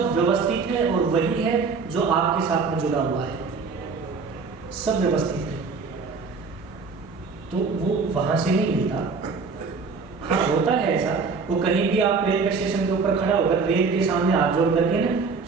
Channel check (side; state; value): left; quieter; 4.8 dB